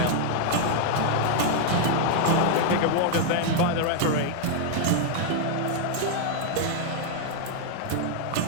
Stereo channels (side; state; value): both; different; correlation 0.00